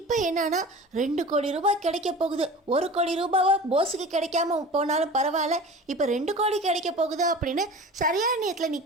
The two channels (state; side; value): normal; both; correlation 0.37